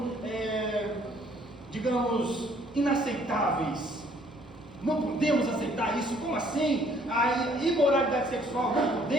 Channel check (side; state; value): both; normal; correlation 0.61